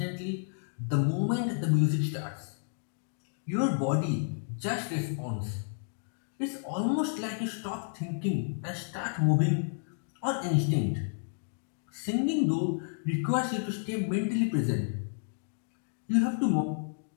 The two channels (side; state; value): right; silent; digital silence